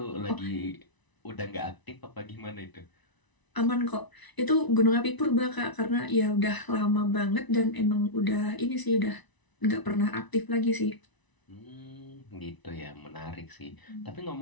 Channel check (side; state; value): right; late; 1.0 ms